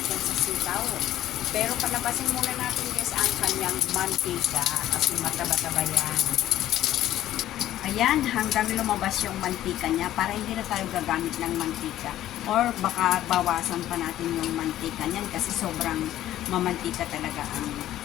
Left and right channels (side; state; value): right; quieter; 13.2 dB